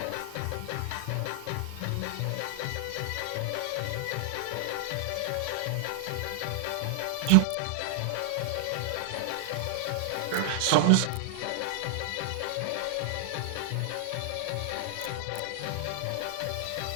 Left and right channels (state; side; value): different; both; correlation 0.00